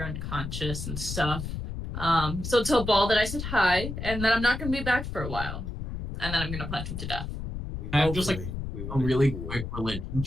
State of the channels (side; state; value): left; noise; rumble, 6 dB below the sound